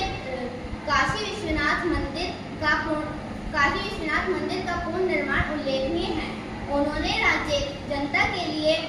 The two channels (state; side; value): identical; both; correlation 1.00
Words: काशी विश्वनाथ मंदिर का पूर्ण निर्माण उल्लेखनीय है। उन्होंने राज्य जनता के लिए